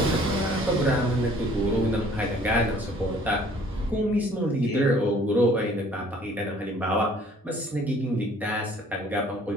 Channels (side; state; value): both; normal; correlation 0.55